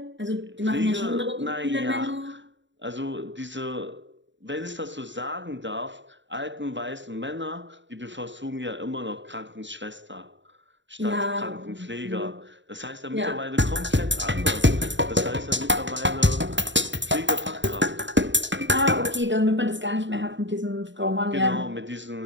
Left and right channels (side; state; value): left; late; 0.54 ms